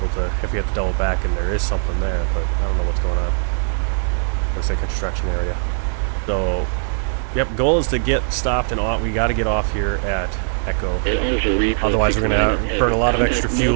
to, if we have to double back, and there is something there, but I don't know what's going on. Looks like construction area. So, yep, goal is to get stopped, and we got to get off here at Echo. Otherwise, we're going to burn a lot of extra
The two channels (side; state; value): left; silent; 66 dB below the other